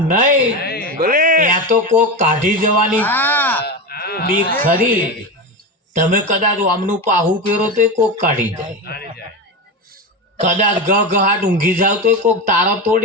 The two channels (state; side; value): normal; both; correlation 0.19